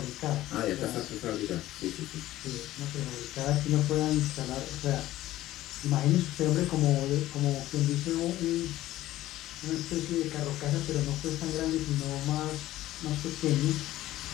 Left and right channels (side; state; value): right; quieter; 15.2 dB